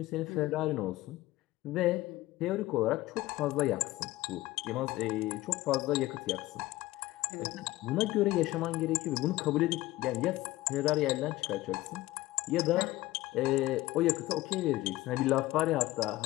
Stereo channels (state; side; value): quieter; right; 17.6 dB